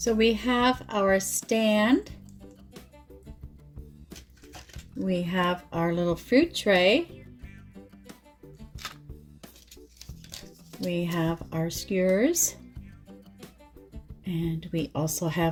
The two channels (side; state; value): both; identical; correlation 1.00